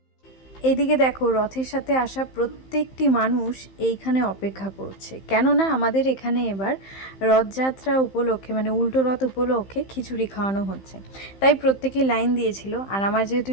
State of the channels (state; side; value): late; right; 15 ms